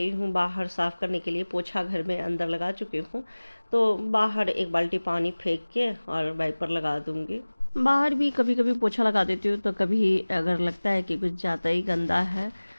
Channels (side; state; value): both; inverted; correlation -1.00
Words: हूँ बाहर साफ़ करने के लिए। पोछा घर में अंदर लगा चुकी हूँ, तो बाहर एक बाल्टी पानी फेंक के और वाइपर लगा दूँगी। बाहर भी कभी कभी पोछा लगा देती हूँ, तो कभी अगर लगता है कि कुछ ज़्यादा ही गंदा है